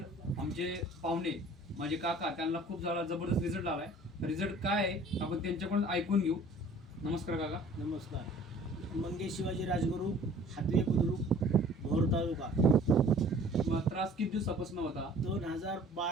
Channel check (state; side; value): normal; both; correlation 0.50